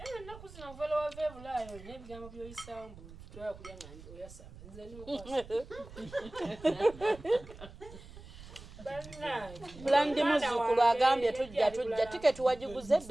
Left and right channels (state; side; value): noise; right; rumble, 17 dB below the sound